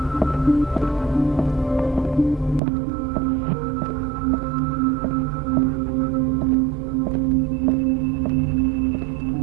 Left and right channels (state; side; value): drops out; left; at 2.6 s